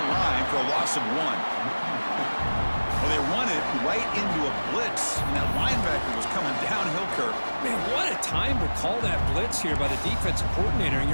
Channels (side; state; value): both; inverted; correlation -1.00